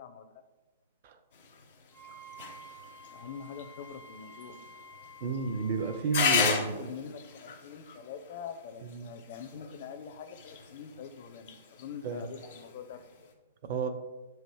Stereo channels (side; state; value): both; inverted; correlation -0.33